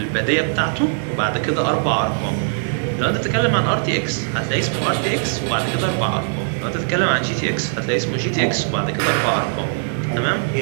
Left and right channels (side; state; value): left; silent; 60 dB below the other